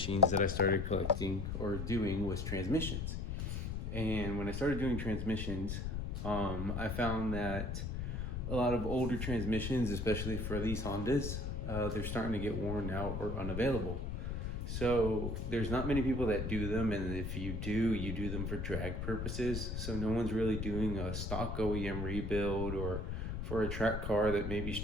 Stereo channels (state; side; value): noise; left; rumble, 3 dB below the sound